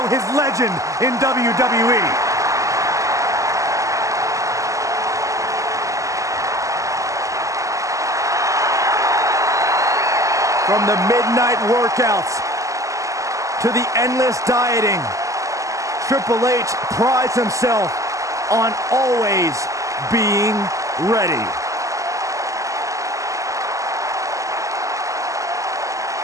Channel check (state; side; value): late; left; 0.16 ms